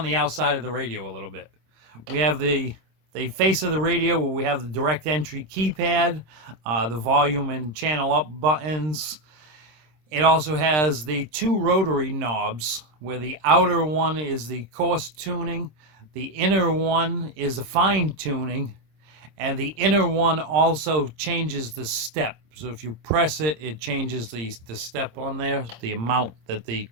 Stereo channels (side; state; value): left; late; 26 ms